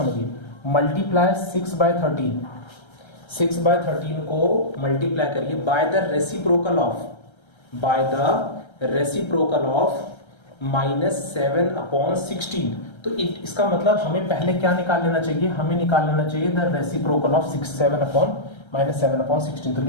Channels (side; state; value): right; late; 1.3 ms